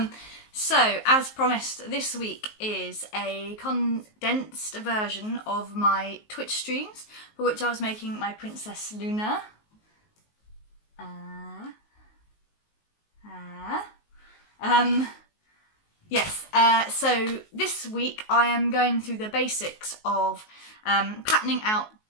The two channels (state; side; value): late; right; 19 ms